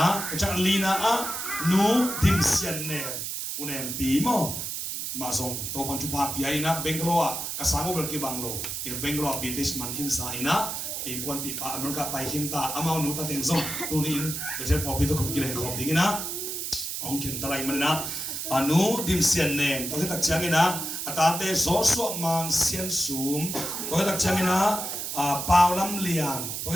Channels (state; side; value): noise; right; hiss, 4 dB below the sound